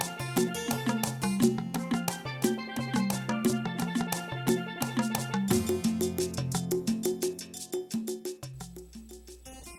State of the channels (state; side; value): identical; both; correlation 1.00